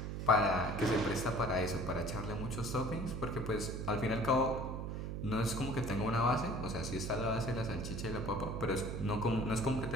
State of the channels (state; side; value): noise; right; hum, 4 dB below the sound